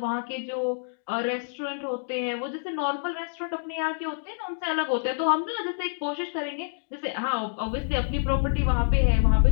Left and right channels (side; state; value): right; silent; digital silence